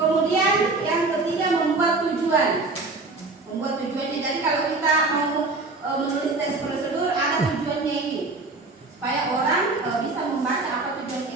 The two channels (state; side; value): quieter; left; 3.5 dB